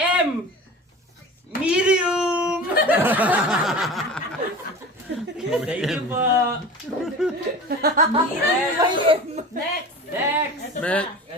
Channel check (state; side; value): normal; both; correlation 0.35